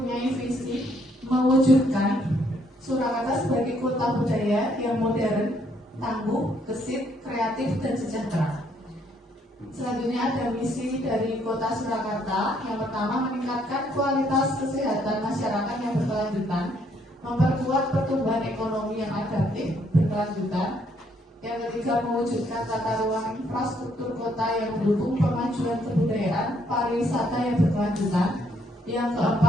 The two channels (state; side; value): normal; both; correlation 0.69